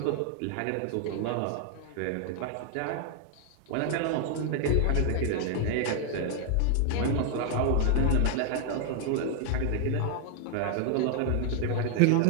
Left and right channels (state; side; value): different; both; correlation 0.00